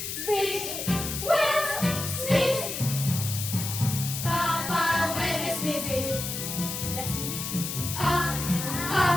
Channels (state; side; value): noise; left; hiss, 5 dB below the sound